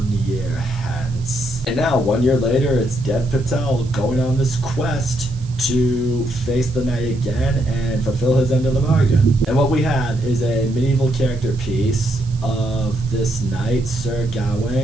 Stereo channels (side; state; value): right; noise; hiss, 24 dB below the sound